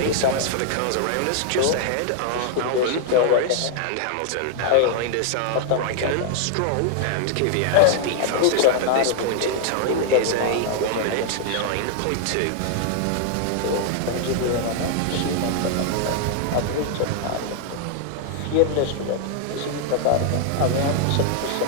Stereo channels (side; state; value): both; different; correlation 0.00